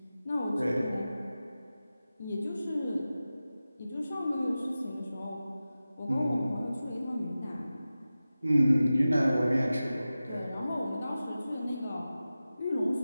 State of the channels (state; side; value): inverted; both; correlation -0.95